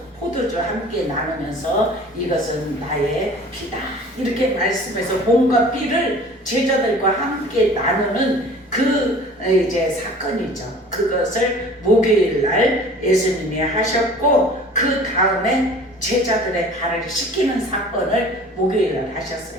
포도주 함께 나누면서 이것은 나의 피다 이렇게 말씀해서 몸과 피를 제자들과 함께 나누는 그 이제 사건이죠. 그것을 목요일 날 예수님이 하셨고 그 다음에 제자들의 발을 씻기는 사건을 목요일 날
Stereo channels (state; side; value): normal; both; correlation 0.45